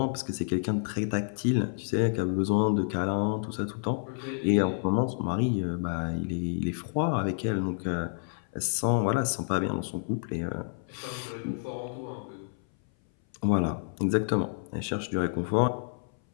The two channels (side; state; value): right; silent; 58 dB below the other